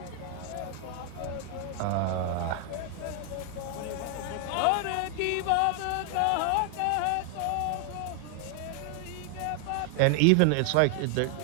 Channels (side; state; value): both; different; correlation 0.00